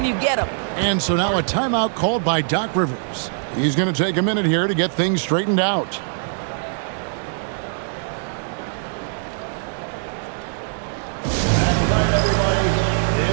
you get them. And so now a timeout called by Doc Rivers. He's going to take a minute here to get things straightened out.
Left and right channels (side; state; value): left; silent; 56 dB below the other